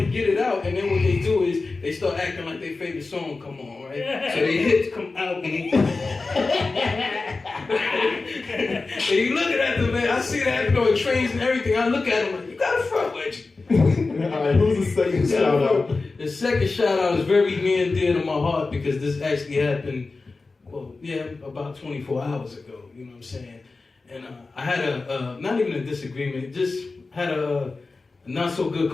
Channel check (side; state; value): right; quieter; 3.8 dB